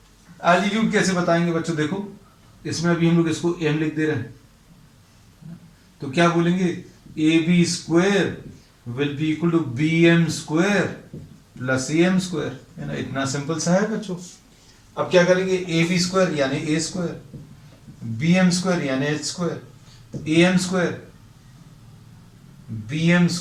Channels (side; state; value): both; identical; correlation 1.00